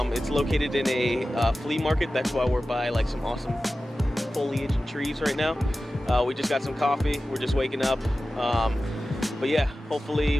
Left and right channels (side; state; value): both; normal; correlation 0.95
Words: It's located in a flea market. That's why we're by like some awesome foliage and trees right now. We just got some coffee. We're just waking up. But yeah,